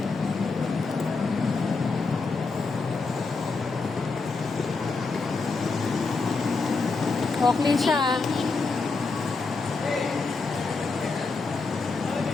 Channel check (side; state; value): right; quieter; 4.1 dB